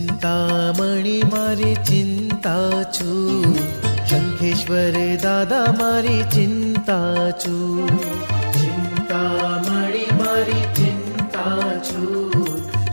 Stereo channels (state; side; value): inverted; both; correlation -1.00